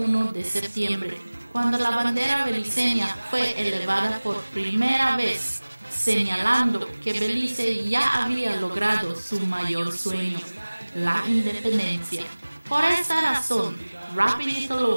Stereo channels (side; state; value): both; inverted; correlation -1.00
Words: de septiembre, cuando la bandera beliceña fue elevada por primera vez, señalando que Belice ya había logrado su mayor sueño, la independencia. Por esta razón, Rapidito